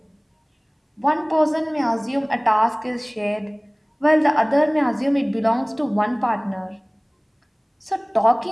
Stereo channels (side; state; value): both; identical; correlation 1.00